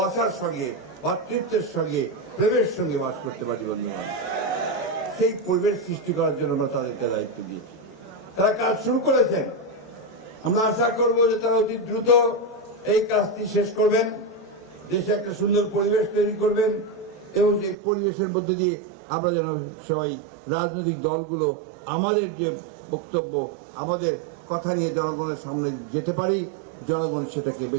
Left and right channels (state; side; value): drops out; left; at 17.8 s